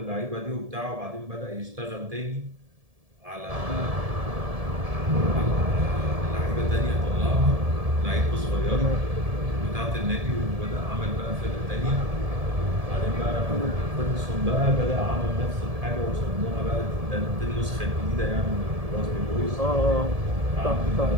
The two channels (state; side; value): late; left; 1.7 ms